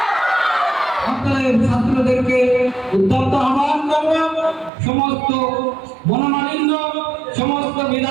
আপনাদের ছাত্রদেরকে উদ্যত আহ্বান করব, সমস্ত মনোমালিন্য, সমস্ত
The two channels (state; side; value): drops out; left; at 4.7 s